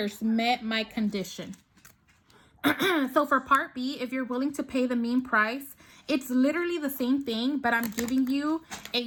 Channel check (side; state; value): both; identical; correlation 1.00